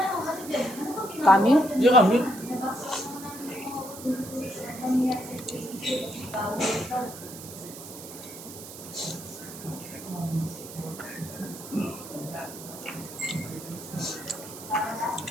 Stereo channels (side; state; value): right; noise; hiss, 13 dB below the sound